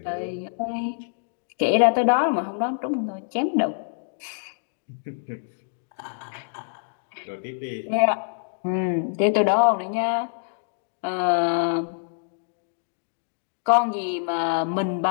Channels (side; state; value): right; silent; digital silence